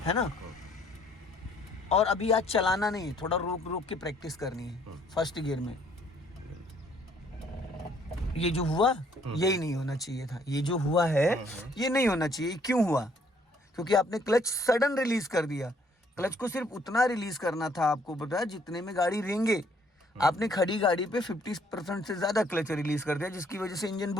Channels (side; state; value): both; normal; correlation 0.64